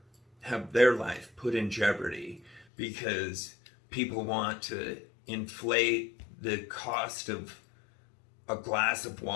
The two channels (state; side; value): drops out; right; at 2.7 s